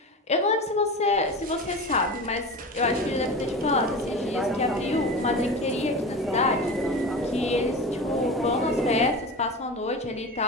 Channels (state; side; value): normal; both; correlation 0.29